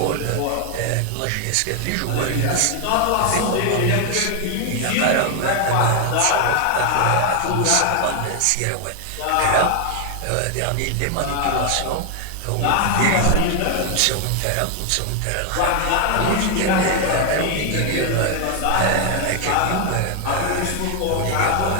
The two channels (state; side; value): different; both; correlation 0.01